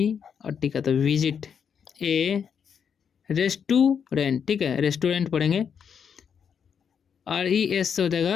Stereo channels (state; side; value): quieter; right; 7.3 dB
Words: और टी का तो विजिट। ए रेस्टोरेंट। ठीक है, रेस्टोरेंट पढ़ेंगे, RES से हो